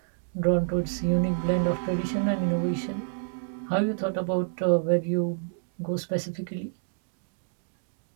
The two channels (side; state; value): left; silent; digital silence